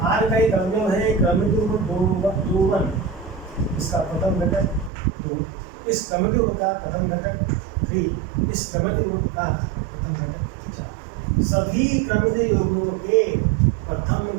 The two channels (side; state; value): left; drops out; at 4.9 s